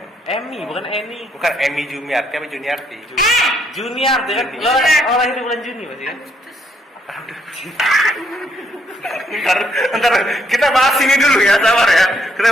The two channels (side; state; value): both; normal; correlation 0.71